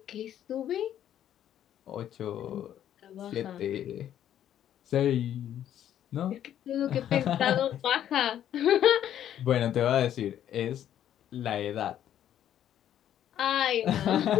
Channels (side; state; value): right; quieter; 10.8 dB